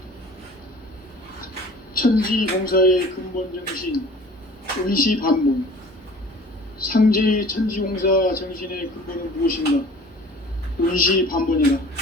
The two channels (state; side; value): normal; both; correlation 0.46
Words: 천지공사의 근본 정신 운시반문. 상제의 천지공사 정신의 근본은 무엇인가? 운시반문이다.